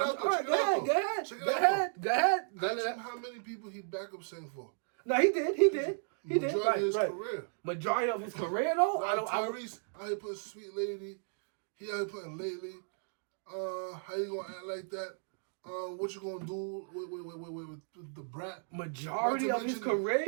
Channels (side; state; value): left; silent; digital silence